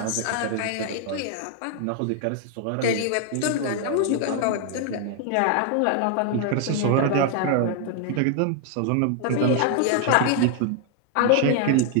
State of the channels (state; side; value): different; both; correlation 0.00